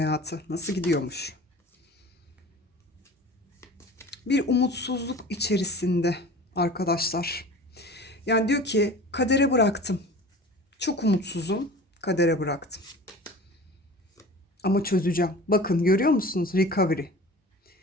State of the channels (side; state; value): both; normal; correlation 0.40